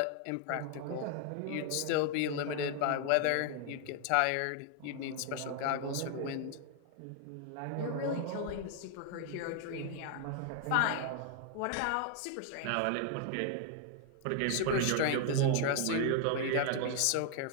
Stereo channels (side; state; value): both; different; correlation 0.00